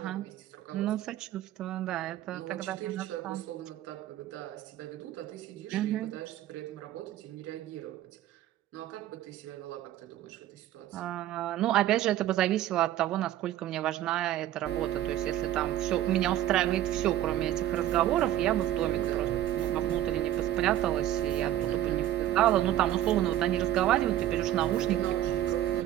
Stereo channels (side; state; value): left; quieter; 12.9 dB